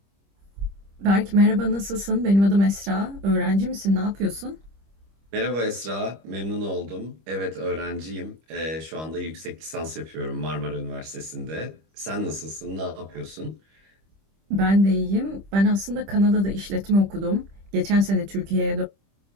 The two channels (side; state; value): left; late; 25 ms